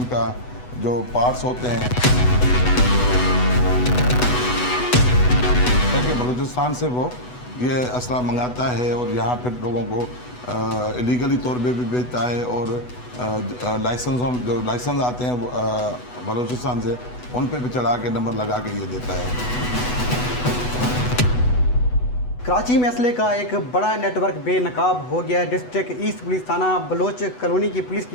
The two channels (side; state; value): right; late; 8.1 ms